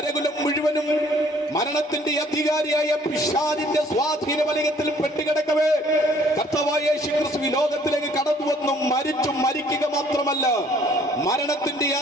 മുഴുവനും മരണത്തിന്റെ അധികാരിയായ പിശാചിന്റെ സ്വാധീന വലയത്തിൽ പെട്ടുകിടക്കവേ കർത്താവായ യേശു ക്രിസ്തു ലോകത്തിലേക്ക് കടന്നു വന്നു മരിച്ചു. മരിക്കുക മാത്രമല്ല, മരണത്തിന്റെ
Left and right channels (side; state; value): both; normal; correlation 0.59